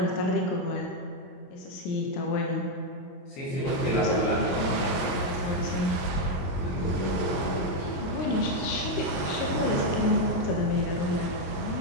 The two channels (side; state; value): right; late; 22 ms